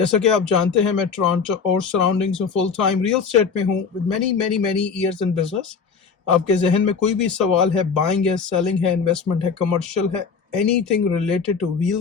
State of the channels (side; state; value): right; quieter; 5.6 dB